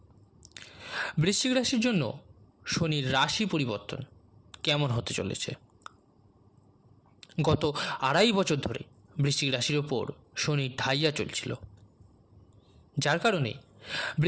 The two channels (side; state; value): both; identical; correlation 1.00